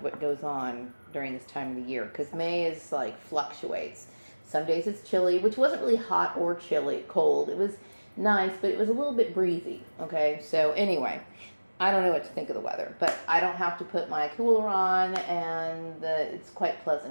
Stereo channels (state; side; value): inverted; both; correlation -1.00